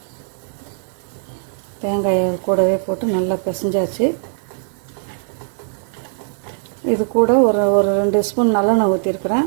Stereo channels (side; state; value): left; silent; digital silence